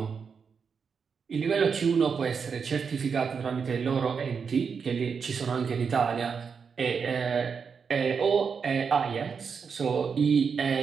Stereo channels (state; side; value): quieter; left; 6.0 dB